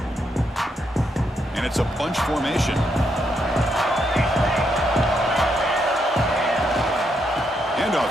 It's a bunch formation.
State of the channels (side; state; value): both; normal; correlation 0.79